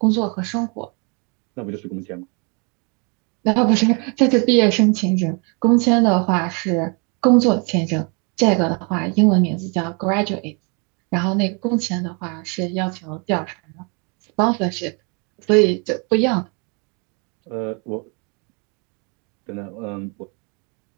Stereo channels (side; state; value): left; quieter; 34.0 dB